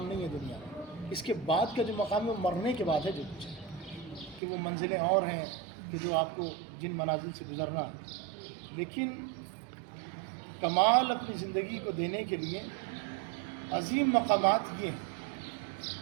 نہیں ہے دنیا میں. اس کے بعد کا جو مقام ہے وہ مرنے کے بعد ہے جو کچھ ہے، کہ وہ منزلیں اور ہیں کہ جو آپ کو جن منازل سے گزرنا ہے. لیکن کمال اپنی زندگی کو دینے کے لیے عظیم مقامات یہ ہیں.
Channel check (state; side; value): drops out; left; at 4.4 s